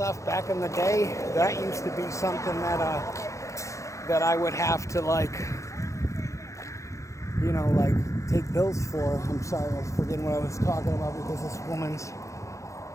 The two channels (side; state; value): right; late; 0.15 ms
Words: Back in the day, that used to be something that I would have to like, you know, like take pills for. I'm sorry, I was forgetting what I was talking about because this woman's